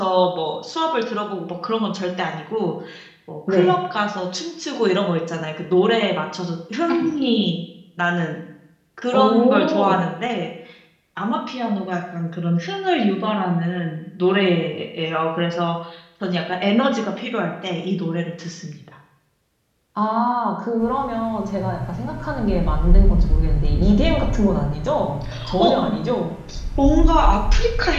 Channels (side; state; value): both; identical; correlation 1.00